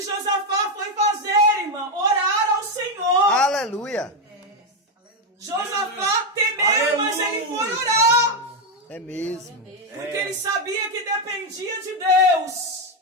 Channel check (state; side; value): normal; both; correlation 0.05